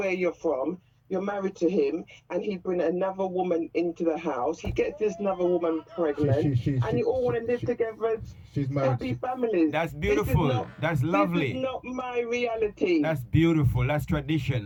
you're from? You're married to him, and he bring another woman into the house. He gets this another woman pregnant, and you all want to live together as happy families. That's beautiful. That's lovely. This is not my reality. That's beautiful. That's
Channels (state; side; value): identical; both; correlation 1.00